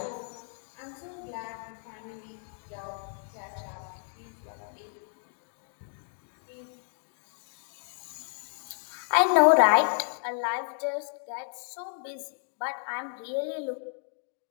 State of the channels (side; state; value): right; silent; 57 dB below the other